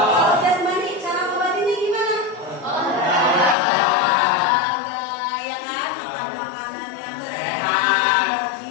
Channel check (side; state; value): right; drops out; at 3.6 s